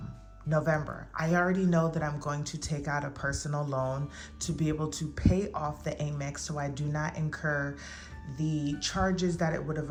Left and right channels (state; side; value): identical; both; correlation 1.00